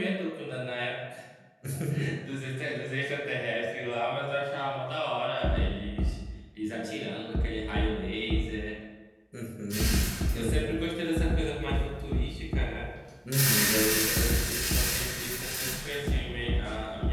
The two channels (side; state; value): both; identical; correlation 1.00